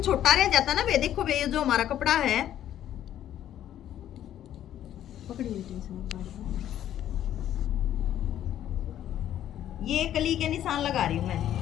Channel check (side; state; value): right; quieter; 11.4 dB